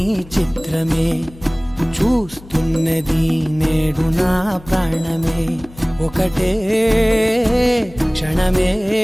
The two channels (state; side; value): noise; left; hum, 20 dB below the sound